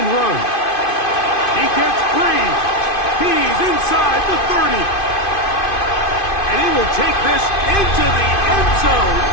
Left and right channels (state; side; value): late; right; 2.5 ms